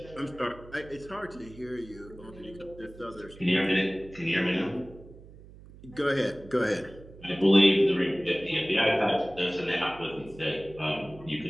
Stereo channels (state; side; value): noise; right; hum, 19 dB below the sound